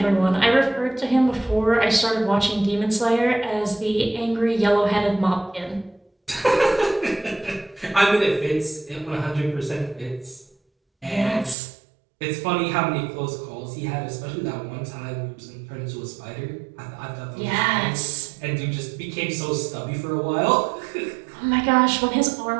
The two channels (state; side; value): drops out; left; at 11.6 s